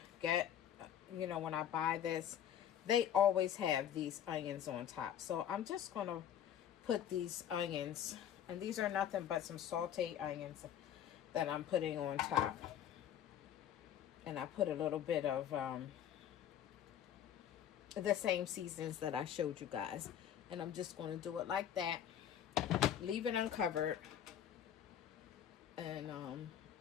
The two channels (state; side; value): quieter; right; 9.9 dB